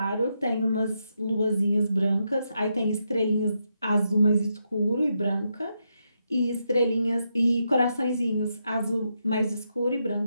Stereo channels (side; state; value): both; inverted; correlation -0.83